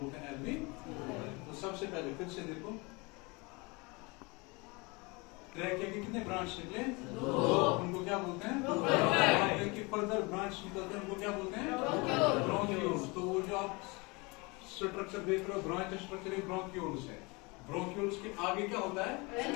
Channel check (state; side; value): quieter; right; 27.0 dB